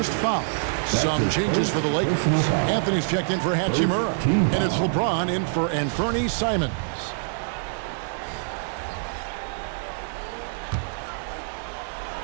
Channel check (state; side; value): silent; left; digital silence